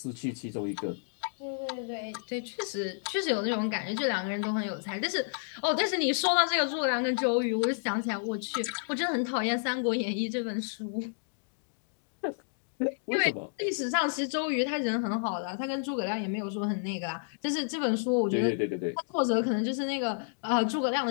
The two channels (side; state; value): right; silent; digital silence